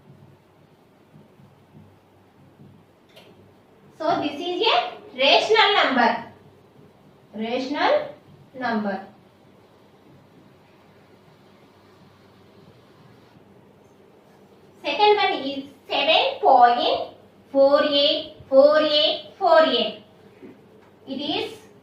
So this is a rational number. Rational number. Second one is 7.484848. It is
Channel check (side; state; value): both; identical; correlation 1.00